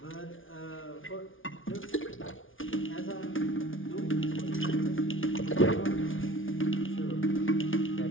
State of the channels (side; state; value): right; late; 0.57 ms